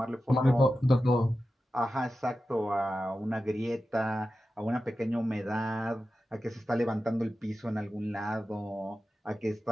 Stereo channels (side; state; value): both; normal; correlation 0.92